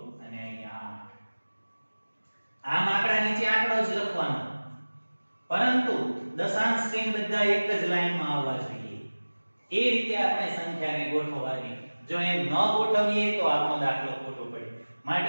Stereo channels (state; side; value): inverted; both; correlation -1.00